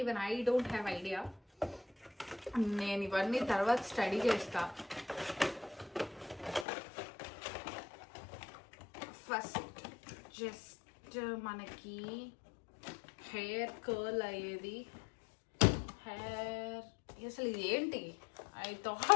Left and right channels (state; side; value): drops out; right; at 6.7 s